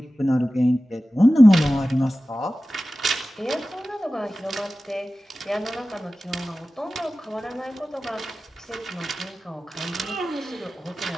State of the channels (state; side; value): normal; both; correlation 0.96